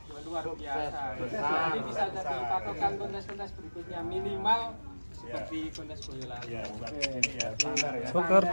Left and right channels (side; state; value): both; inverted; correlation -1.00